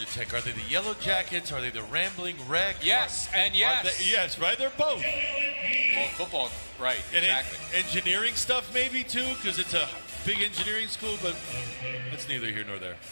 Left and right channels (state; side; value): inverted; both; correlation -1.00